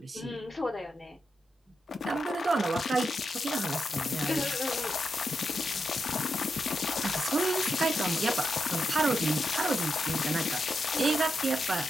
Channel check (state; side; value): normal; both; correlation 0.85